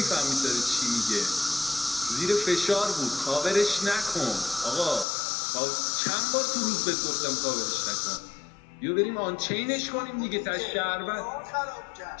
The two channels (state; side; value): drops out; right; at 5.1 s